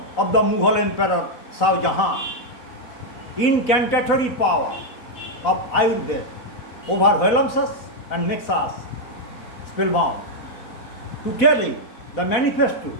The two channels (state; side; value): late; right; 4.1 ms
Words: of the Mughal Emperor Shah Jahan. Incantatory power of Ayurveda overwhelms us and makes us spellbound. To tell you the manifesto,